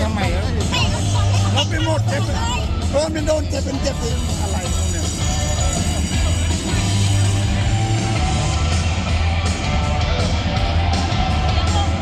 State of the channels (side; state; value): both; identical; correlation 1.00